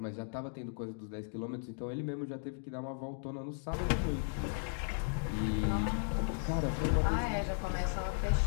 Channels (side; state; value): right; silent; digital silence